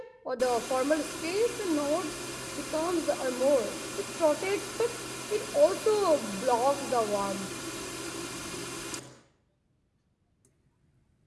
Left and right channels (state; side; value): identical; both; correlation 1.00